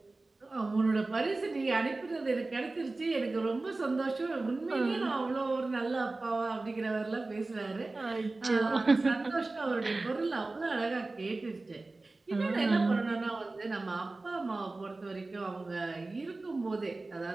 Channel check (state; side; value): quieter; left; 3.3 dB